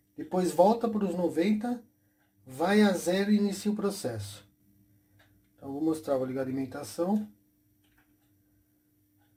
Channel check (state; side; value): identical; both; correlation 1.00